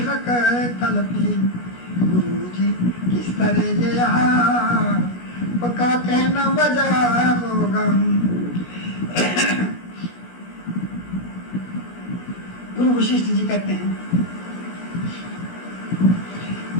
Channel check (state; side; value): late; right; 17 ms